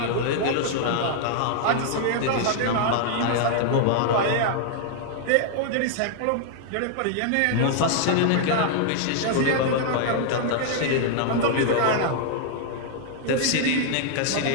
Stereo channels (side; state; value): both; different; correlation 0.00